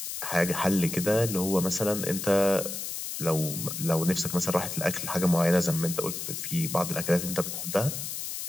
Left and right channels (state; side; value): noise; left; hiss, 6 dB below the sound